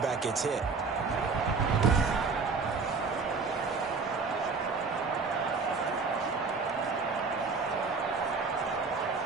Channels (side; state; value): left; quieter; 4.6 dB